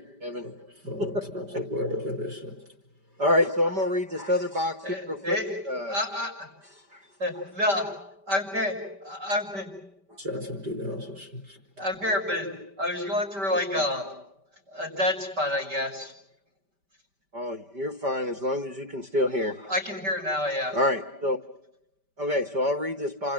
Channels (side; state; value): left; late; 5.1 ms